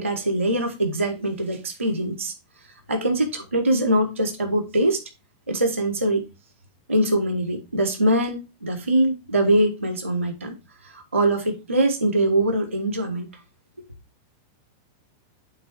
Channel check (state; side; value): inverted; both; correlation -0.68